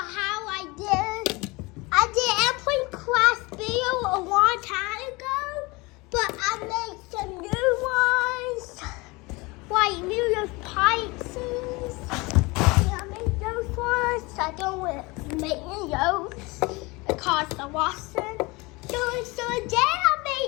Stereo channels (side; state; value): right; quieter; 24.7 dB